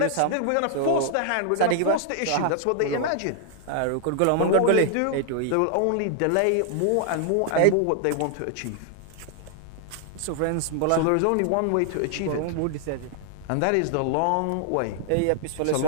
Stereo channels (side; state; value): both; different; correlation 0.00